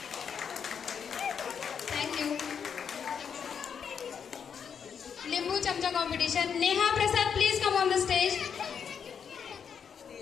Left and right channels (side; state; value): right; quieter; 7.2 dB